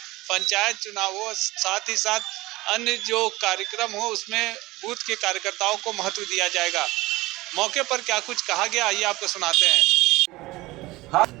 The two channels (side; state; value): left; quieter; 19.9 dB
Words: पंचायत चुनाव हो, साथ ही साथ अन्य जो कार्यक्रम हो उसमें बूथ के कार्यकर्ताओं को महत्व दिया जाएगा। मौके पर क्या कुछ कहा गया, आइए आपको सुनाते हैं।